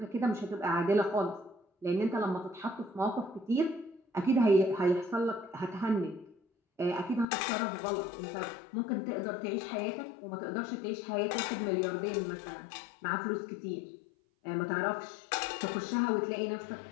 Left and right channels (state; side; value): drops out; right; at 7.2 s